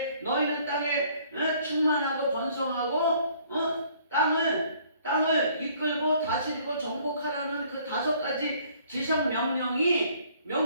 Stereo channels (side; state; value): both; inverted; correlation -0.60